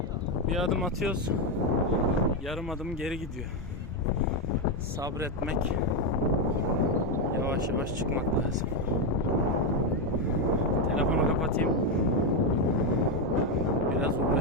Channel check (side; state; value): both; normal; correlation 0.07